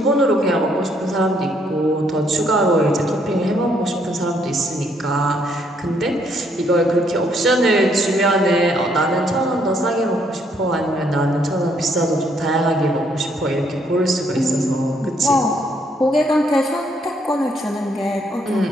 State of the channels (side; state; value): both; normal; correlation 0.70